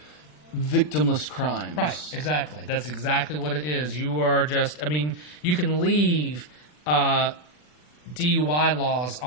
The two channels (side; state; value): right; late; 40 ms